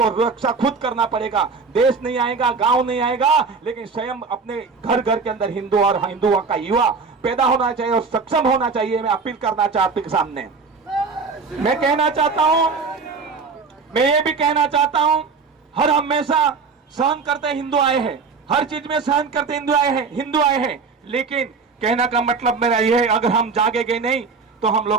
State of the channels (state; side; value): quieter; left; 4.8 dB